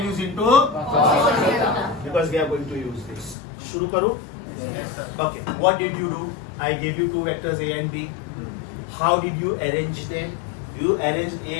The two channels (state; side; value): drops out; right; at 3.4 s